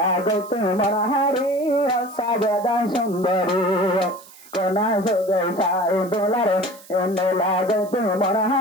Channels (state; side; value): noise; right; hiss, 21 dB below the sound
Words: গত মনহারি সাজেদা সুন্দরী কোনা সগে সাই ডলার মেলা গত